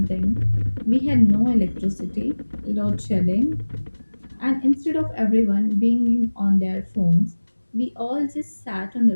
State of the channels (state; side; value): inverted; both; correlation -1.00